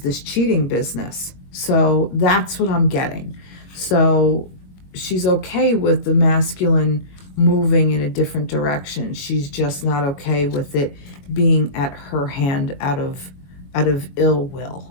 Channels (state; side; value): late; right; 21 ms